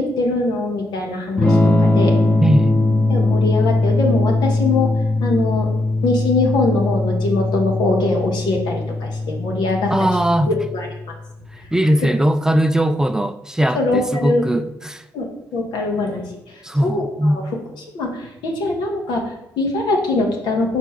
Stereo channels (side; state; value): both; normal; correlation 0.79